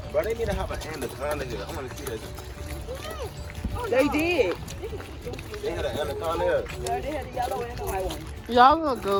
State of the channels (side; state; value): both; identical; correlation 1.00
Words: bro, they need to have an anaconda here. I want to see that. They did. They had an anaconda here. Yeah, they had the yellow and the white one. Y'all gonna